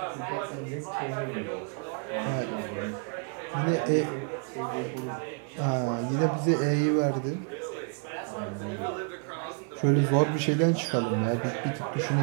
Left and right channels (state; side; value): quieter; left; 39.6 dB